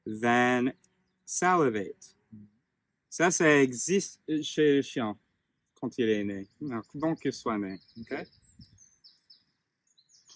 then salivate. Ça existe chez le chien quand il est né, donc qu'il soit né. Okay?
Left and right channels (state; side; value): identical; both; correlation 1.00